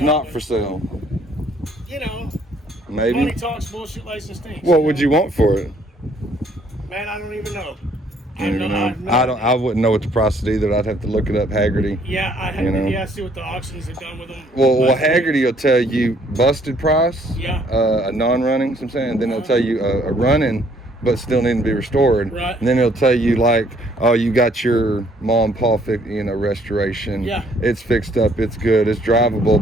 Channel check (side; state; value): both; normal; correlation 0.64